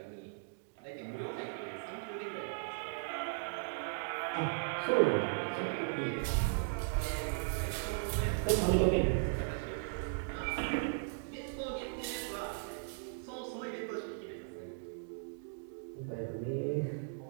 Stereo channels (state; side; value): silent; left; digital silence